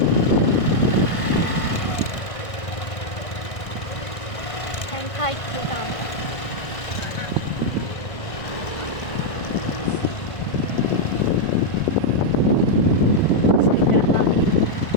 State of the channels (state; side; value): late; right; 1.5 ms